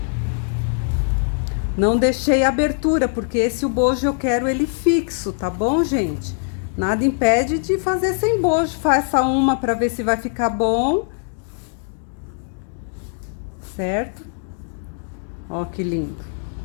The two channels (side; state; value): right; silent; digital silence